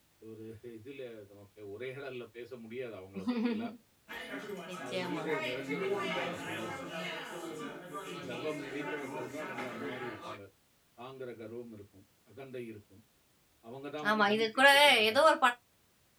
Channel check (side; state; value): both; identical; correlation 1.00